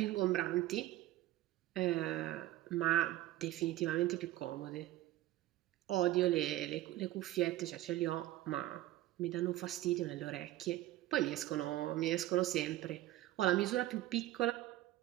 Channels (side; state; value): left; quieter; 15.4 dB